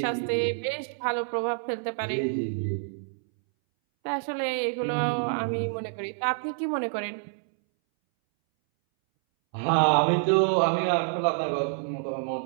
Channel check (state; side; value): silent; left; 60 dB below the other